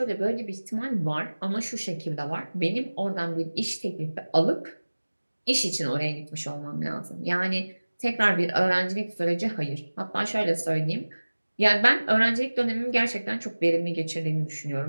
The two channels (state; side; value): inverted; both; correlation -1.00